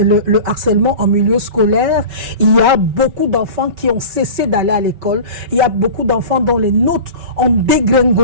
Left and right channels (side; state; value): left; late; 5.2 ms